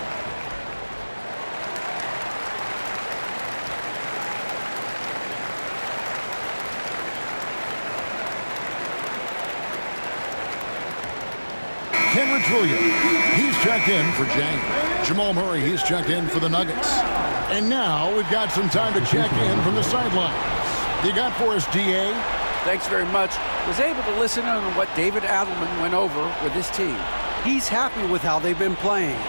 Kenrich Williams, he's checked in for James. Jamal Murray, he's checked in for the Nuggets. And now we've got some time to check in from the sidelines. You got for us, D.A.? Thanks very much. Was able to listen in on what David Adelman went over with his team. He's happy with how they've been playing.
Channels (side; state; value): both; inverted; correlation -1.00